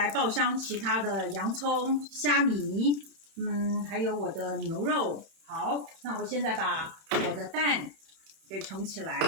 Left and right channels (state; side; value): late; left; 31 ms